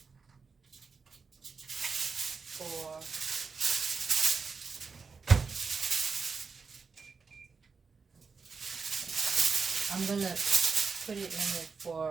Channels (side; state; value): left; quieter; 5.1 dB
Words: for I'm gonna put it in it